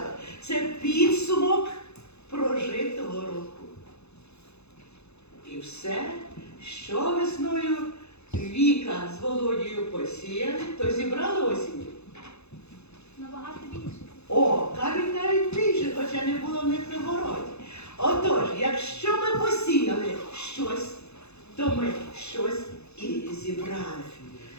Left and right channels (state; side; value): late; right; 0.80 ms